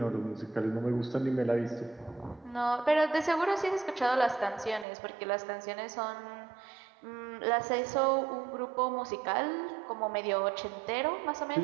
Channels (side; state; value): left; drops out; at 4.9 s